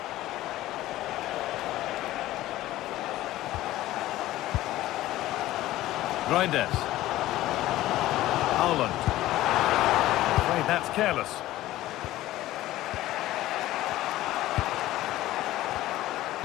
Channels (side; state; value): right; quieter; 15.6 dB